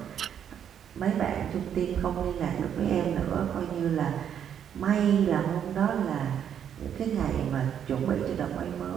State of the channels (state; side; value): quieter; left; 8.9 dB